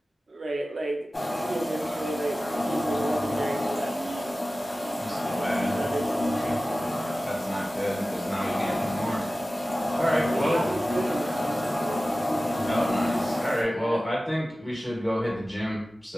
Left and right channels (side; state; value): both; normal; correlation 0.96